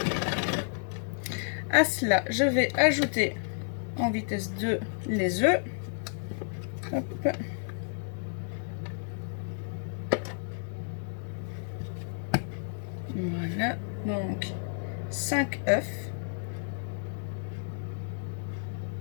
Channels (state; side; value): silent; right; 57 dB below the other